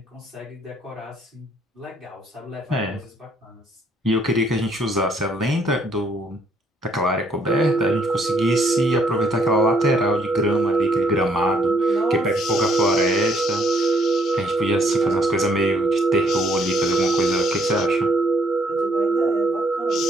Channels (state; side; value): normal; both; correlation 0.67